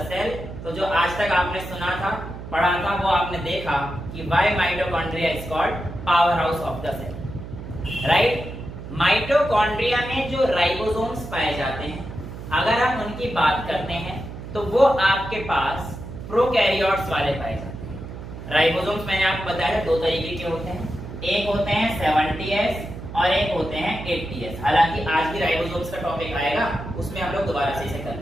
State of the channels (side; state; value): right; noise; hum, 11 dB below the sound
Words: cell. तो जो आज तक आपने सुना था, पढ़ा था, वो आपने देखा कि why mitochondria is called power house of the cell, right. Mitochondria में जो राइबोसोम्स पाए जाते हैं, अगर हम उनकी बात करते हैं तो वो आपके पास प्रोकैरियोट्स वाले पाए जाते हैं। राइबोसोम्स मैंने आपको बताया दो तरीके के होते हैं, एक होते हैं 70S और एक होते हैं 80S। हालांकि आज भी राइबोसोम्स का टॉपिक आएगा, उसमें हम लोग दोबारा से इसे